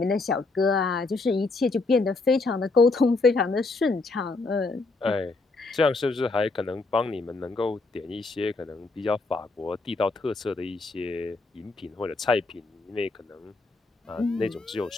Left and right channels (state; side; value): quieter; right; 3.6 dB